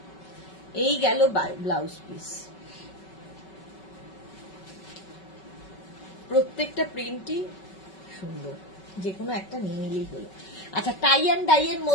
এই গেল ব্লাউজ পিস। প্রত্যেকটা প্রিন্টই সুন্দর, যে কোনো একটা নিয়ে নিলেই হলো। আচ্ছা, টাই অ্যান্ড ডাই এর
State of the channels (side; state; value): right; late; 5.3 ms